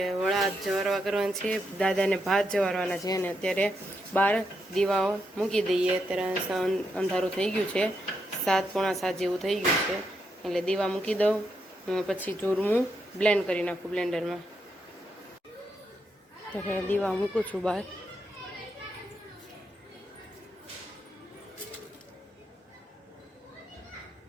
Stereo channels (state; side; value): normal; both; correlation 0.81